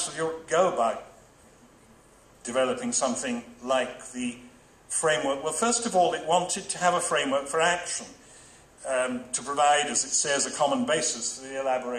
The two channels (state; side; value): identical; both; correlation 1.00